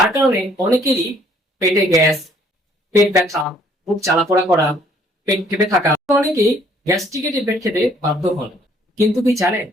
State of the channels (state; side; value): normal; both; correlation 0.62